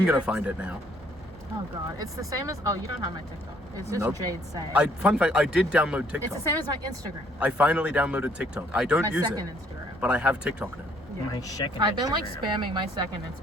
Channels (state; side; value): normal; both; correlation 0.64